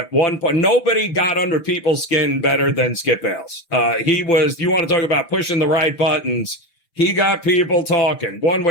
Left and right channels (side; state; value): right; late; 6.4 ms